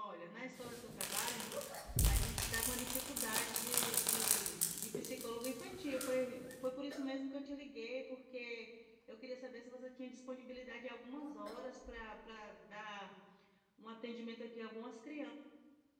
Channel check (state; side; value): identical; both; correlation 1.00